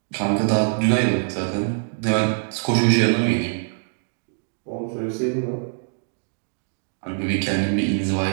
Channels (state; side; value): silent; left; digital silence